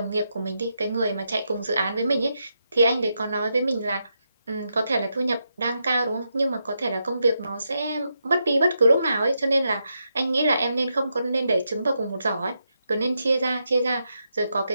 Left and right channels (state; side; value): inverted; both; correlation -0.83